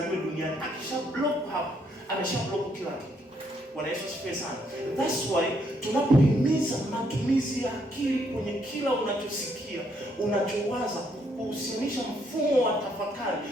duniani, akisha block hapo, amesha block kila kitu. Bwana Yesu asifiwe sana. That's why tunapohimiza matumizi ya akili kwenye kila unachosikia, unachowaza, kuhusianisha mfumo wa tafakari,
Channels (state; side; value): normal; both; correlation 0.72